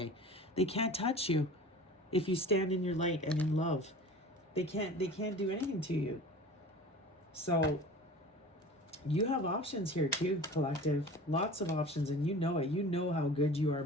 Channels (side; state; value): both; normal; correlation 0.39